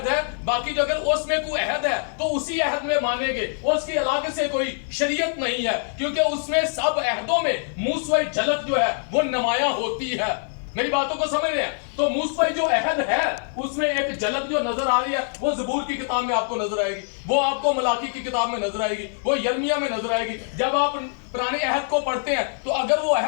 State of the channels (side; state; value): right; silent; digital silence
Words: ہے، باقی جو اگر اس میں کوئی عہد ہے تو اسی عہد میں مانیں گے، اس کی علاقے سے کوئی شریعت نہیں ہے، کیونکہ اس میں سب عہدوں میں موسوی جھلک جو ہے وہ نمایاں ہوتی ہے. میری باتوں کو سمجھ رہے ہیں؟ تو موسوی جو عہد ہے اس میں ایک جھلک جو نظر آ رہی ہے وہ زبور کی کتاب میں آپ کو نظر آئے گی، وہ آپ کو ملاکی کی کتاب میں نظر آئے گی، وہ یرمیہ میں نظر آئے گی. جب آپ پرانے عہد کو پڑھتے ہیں تو اگر وہ